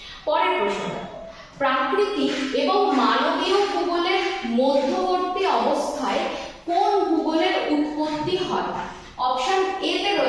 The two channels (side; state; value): both; identical; correlation 1.00